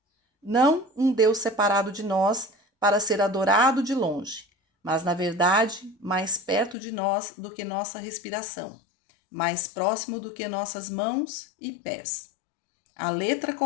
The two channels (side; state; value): right; drops out; at 6.8 s